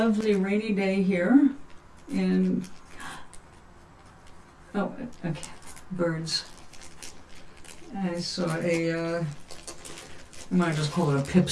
rainy day here in, oh, okay, birds. I saw I might just call it a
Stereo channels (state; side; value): identical; both; correlation 1.00